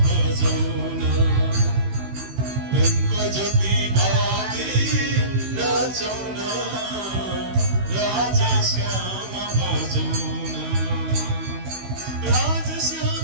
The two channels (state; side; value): late; left; 16 ms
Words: भजौना ढुङ्को ज्योति बाली नाचौना राजश्याम भजौना